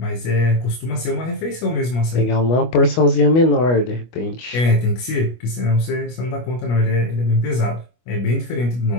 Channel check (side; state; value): right; late; 25 ms